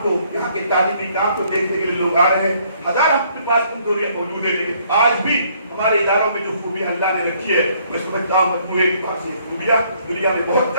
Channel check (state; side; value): inverted; both; correlation -0.65